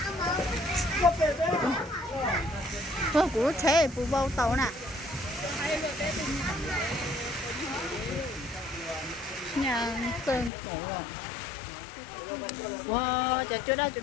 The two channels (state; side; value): drops out; right; at 10.5 s